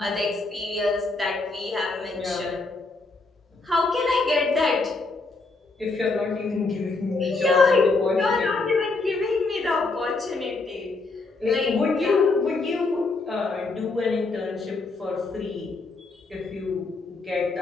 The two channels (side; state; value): right; quieter; 3.6 dB